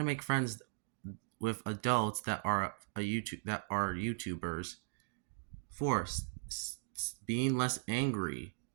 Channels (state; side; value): silent; left; digital silence